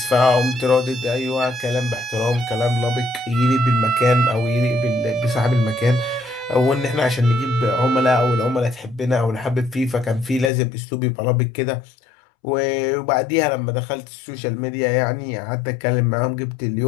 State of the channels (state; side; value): drops out; right; at 10.5 s